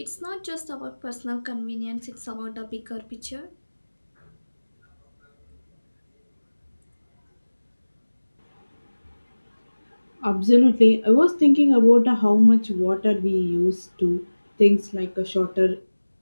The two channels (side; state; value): both; inverted; correlation -1.00